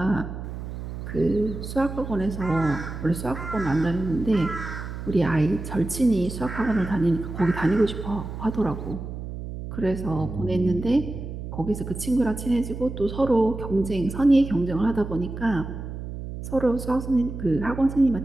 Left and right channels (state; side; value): noise; right; hum, 8 dB below the sound